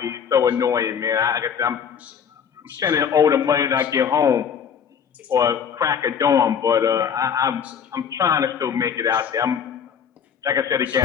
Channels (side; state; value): right; quieter; 7.5 dB